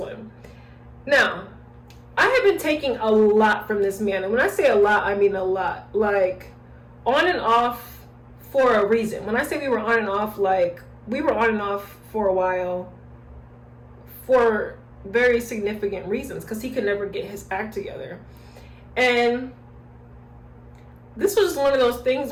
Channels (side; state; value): both; identical; correlation 1.00